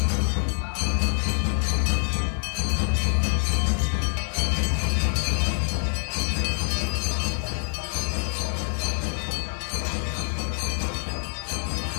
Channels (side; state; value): right; silent; digital silence